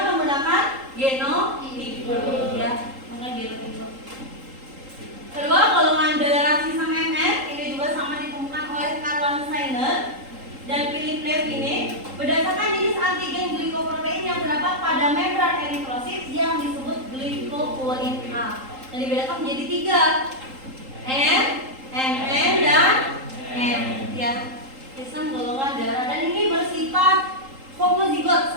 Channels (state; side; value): late; left; 3.8 ms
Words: menggunakan genotipe. Ya, menggunakan genotipe. Kedua, golongan darah sistem MN ini juga sama ditemukan oleh Karl Steiner dan Philip Levine berdasarkan jenis antigen glikoprotein yang terdapat pada membran eritrosit yang disebut glikoprotein A. Dan dibedakan menjadi 3, N, MN, dan M. Ya, sistem golongan darah, dan ini bersifat homozigot